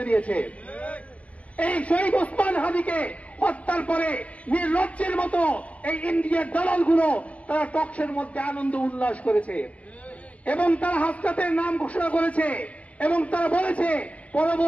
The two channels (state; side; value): late; right; 0.065 ms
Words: দিয়েছে। এই শহীদ ওসমান হাদিকে হত্যার পরে নির্লজ্জের মতো এই ইন্ডিয়ার দালালগুলো তারা টকশের মধ্যে আনন্দ উল্লাস করেছে এবং তারা হাসনাতের নাম ঘোষণা করেছে এবং তারা বলেছে